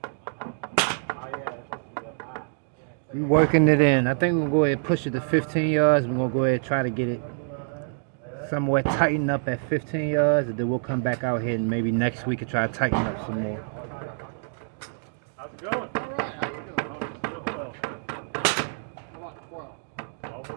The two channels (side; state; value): left; silent; 61 dB below the other